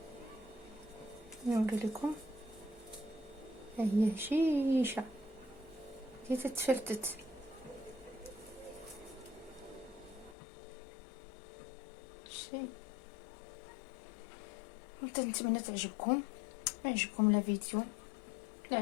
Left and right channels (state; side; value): drops out; right; at 10.4 s